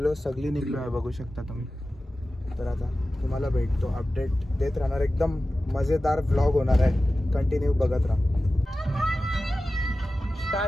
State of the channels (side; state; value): both; normal; correlation 0.95